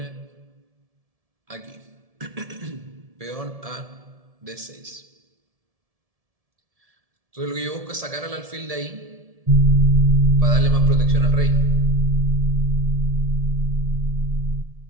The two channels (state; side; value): late; left; 1.7 ms